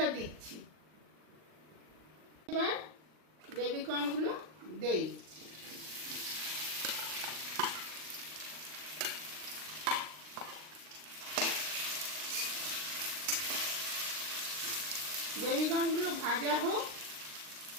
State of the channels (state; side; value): late; left; 39 ms